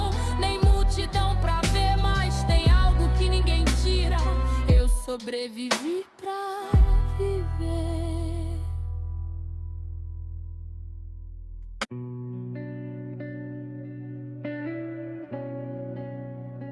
nem multidão pra ver, mas tem algo que ninguém tira. Eu sobrevivi pra viver.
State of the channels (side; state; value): both; identical; correlation 1.00